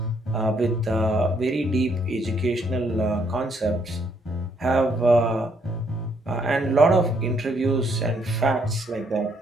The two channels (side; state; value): both; normal; correlation 0.71